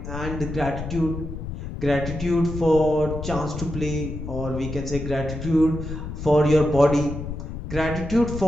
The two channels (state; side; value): noise; left; rumble, 7 dB below the sound